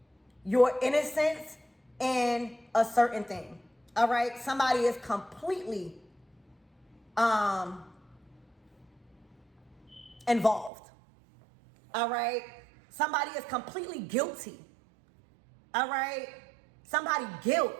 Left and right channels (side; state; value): left; drops out; at 10.7 s